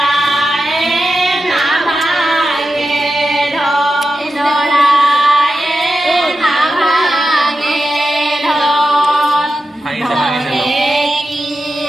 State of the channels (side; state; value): both; normal; correlation 0.90